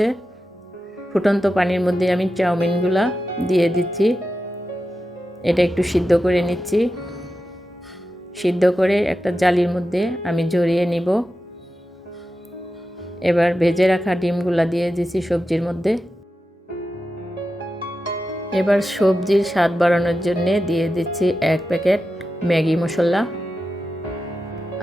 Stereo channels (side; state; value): both; normal; correlation 0.91